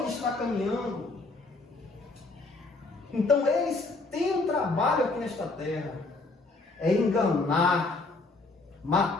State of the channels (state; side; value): quieter; right; 3.4 dB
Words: está caminhando. Então eles têm um trabalho aqui nesta terra. É enganar,